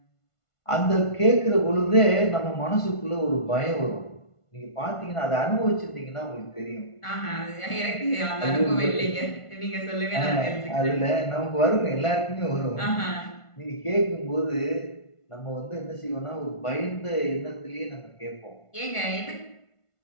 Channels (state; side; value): late; right; 1.5 ms